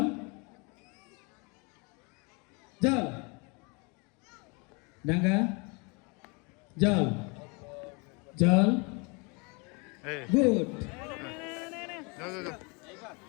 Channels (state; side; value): quieter; right; 30.7 dB